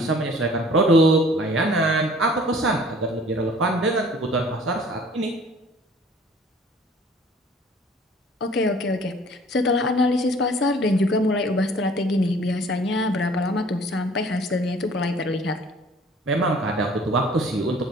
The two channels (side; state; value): both; normal; correlation 0.52